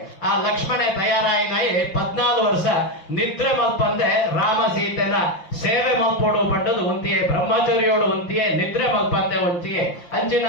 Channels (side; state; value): right; late; 5.6 ms